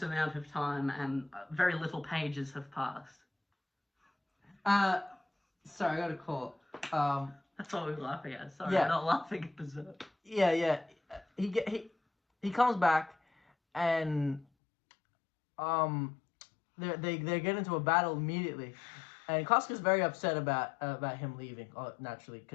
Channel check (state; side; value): drops out; right; at 14.5 s